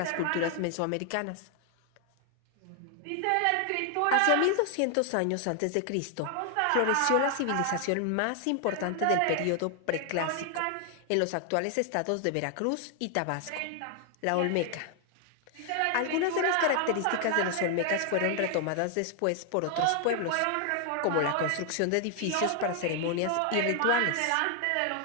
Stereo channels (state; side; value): different; both; correlation 0.00